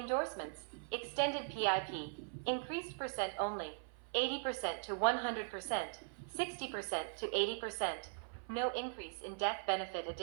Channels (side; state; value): left; silent; 51 dB below the other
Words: Extended PIP. Increased % only. 80% to 100%. 60% to 80%. No increase in death benefit.